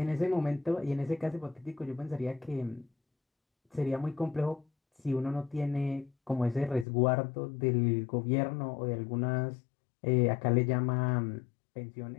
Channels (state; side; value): drops out; right; at 6.9 s